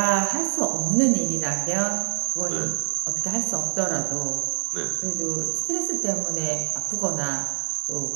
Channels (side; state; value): left; silent; 62 dB below the other